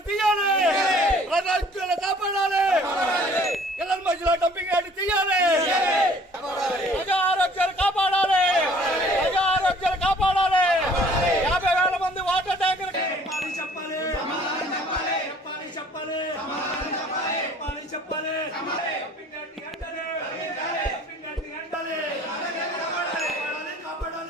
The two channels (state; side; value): normal; both; correlation 0.54